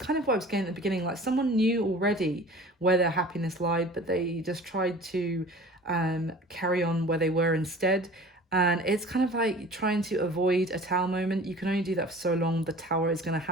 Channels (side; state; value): both; normal; correlation 0.43